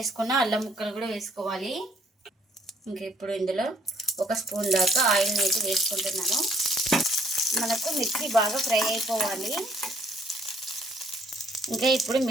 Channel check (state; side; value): normal; both; correlation 0.64